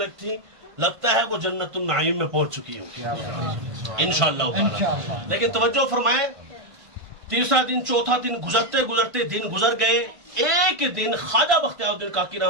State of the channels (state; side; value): late; left; 1.5 ms